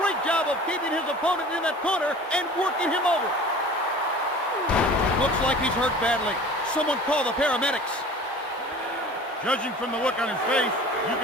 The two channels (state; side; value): normal; both; correlation 0.42